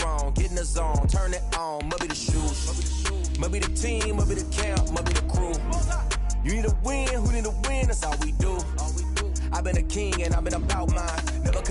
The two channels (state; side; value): identical; both; correlation 1.00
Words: get in the zone, turn it on, must be the shoes, must be the team, must be the camp, must be the crew. You need a win, who need a win, that's all we do. I've been a king and I've been about mine, never